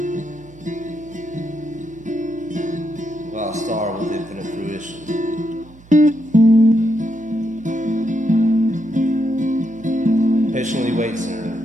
While a star with infinite fruition patiently waits in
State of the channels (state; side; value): noise; right; hum, 23 dB below the sound